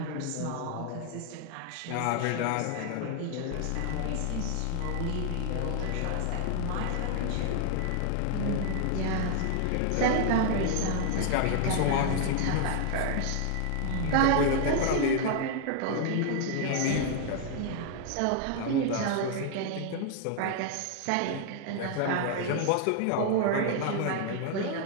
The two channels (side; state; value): both; different; correlation 0.00